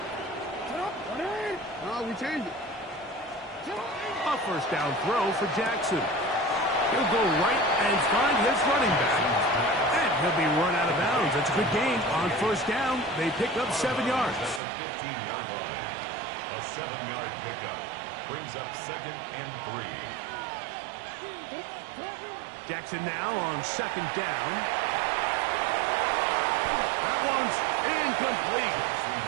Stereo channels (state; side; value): drops out; left; at 14.6 s